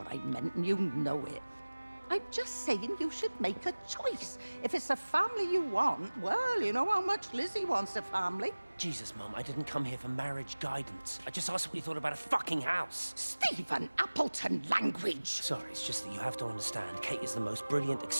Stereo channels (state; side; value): inverted; both; correlation -1.00